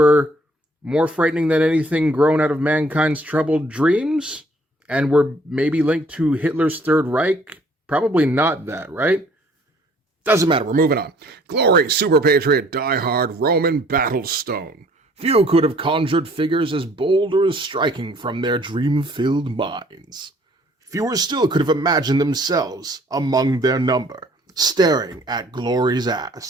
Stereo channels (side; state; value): both; normal; correlation 0.59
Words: more frightening than anything grown out of mankind's troubled dreams? And were maybe linked to Hitler's Third Reich? Probably not that, right? Doesn't matter, we're moving on. Glory, Super Patriot, Die-Hard, Roman, Battlestone. Few could have conjured figures as bold or as striking from their dream-filled minds. Fewer still could have imagined themselves among their number, staring at Glory's